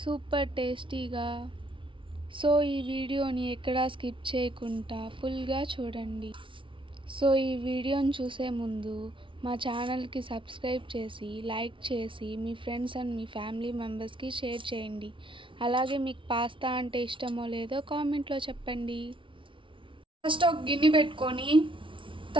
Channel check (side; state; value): left; late; 0.25 ms